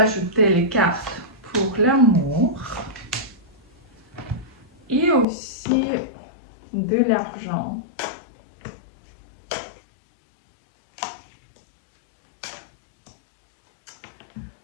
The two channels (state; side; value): drops out; right; at 5.2 s